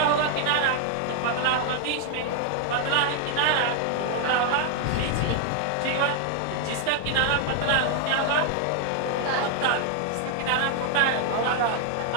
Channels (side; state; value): both; different; correlation 0.00